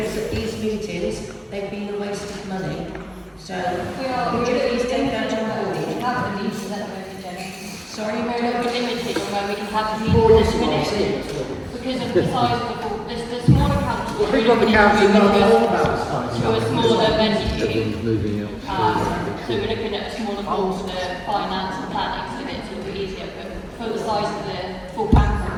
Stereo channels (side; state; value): both; identical; correlation 1.00